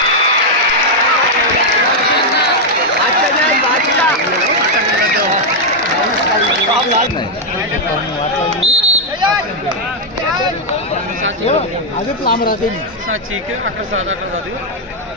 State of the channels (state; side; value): normal; both; correlation -0.01